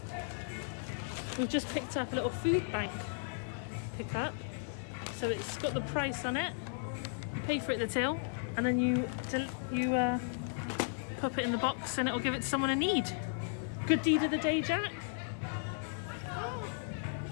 We've just picked up a little food bank pickup. So it's got the price on it. You pay for it at the till, and then you pop it in the box and it'll give it to someone in need. Good deed of the day, Jack. Oh.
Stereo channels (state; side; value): silent; right; 54 dB below the other